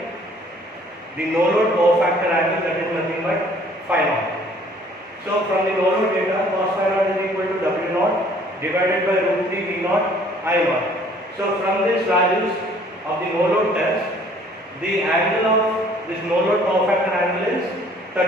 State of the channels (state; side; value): normal; both; correlation 0.57